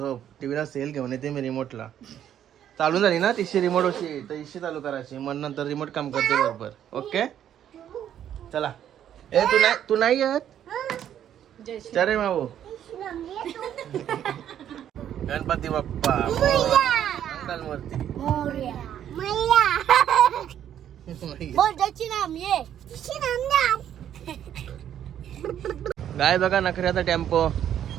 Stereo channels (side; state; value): left; quieter; 10.2 dB